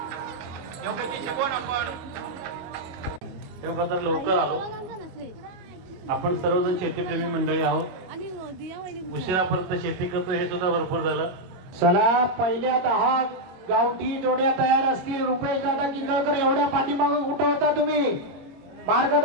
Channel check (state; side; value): late; left; 22 ms